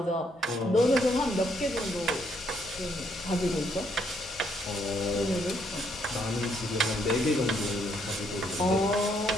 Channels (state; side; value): normal; both; correlation 0.72